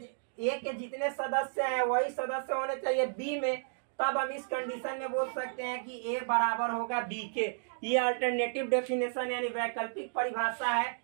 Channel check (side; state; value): left; silent; digital silence